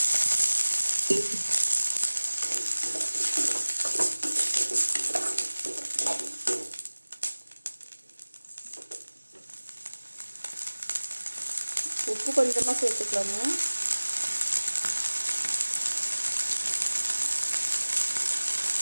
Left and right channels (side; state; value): both; inverted; correlation -1.00